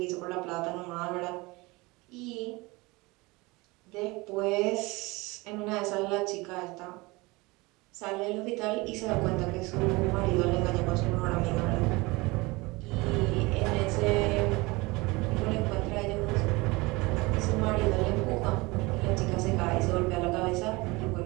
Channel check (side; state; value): left; quieter; 23.6 dB